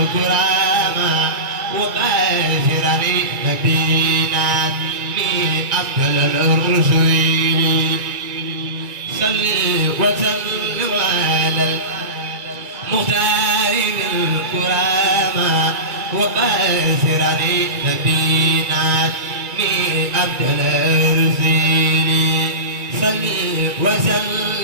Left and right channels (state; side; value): late; left; 2.3 ms